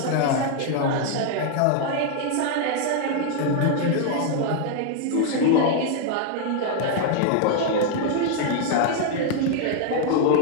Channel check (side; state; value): both; different; correlation 0.00